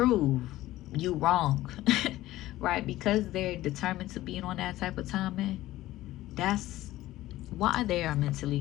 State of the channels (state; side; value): quieter; right; 15.9 dB